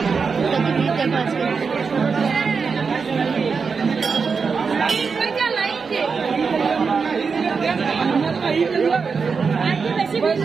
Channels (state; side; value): quieter; left; 5.3 dB